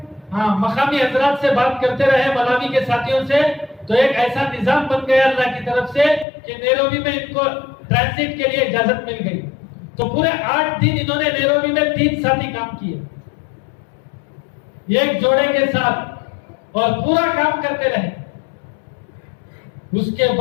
مقامی حضرات سے بات کرتے رہے, ملاوی کے ساتھیوں سے. تو ایک ایسا نظام بن گیا اللہ کی طرف سے کہ نیروبی میں ان کو ٹرانزٹ کے لیے اجازت مل گئی. تو پورے 8 دن انہوں نے نیروبی میں 3 ساتھی کام کیے ایک جوڑے کے ساتھ, اور پورا کام کرتے رہے. اس کے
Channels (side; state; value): right; drops out; at 6.2 s